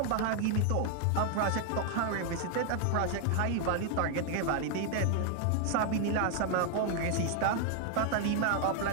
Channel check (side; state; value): both; different; correlation 0.00